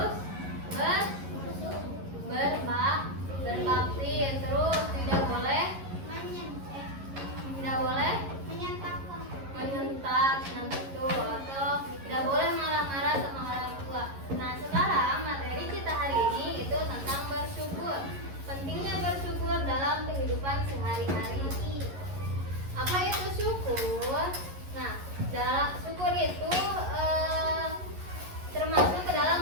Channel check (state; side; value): late; left; 11 ms